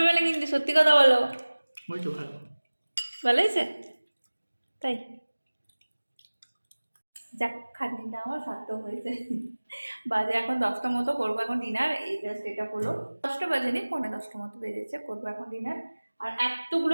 না কিন্তু, সত্যি কথা বলো। ওই তো ভালো। ভালো হয়েছে? তাই যাক, খাটনিটা আমার সার্থক হয়েছে। বাজে এখন 10টা মতো, করবো এখন ডিনার। এই জাস্ট এটা হলো 10টা বাজেনি, 9:45 মতো বেজেছে, করবো এখন ডিনার। আর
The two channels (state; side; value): inverted; both; correlation -1.00